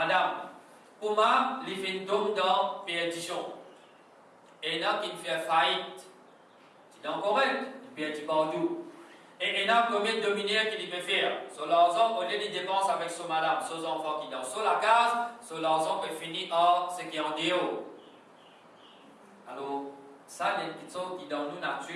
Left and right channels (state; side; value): identical; both; correlation 1.00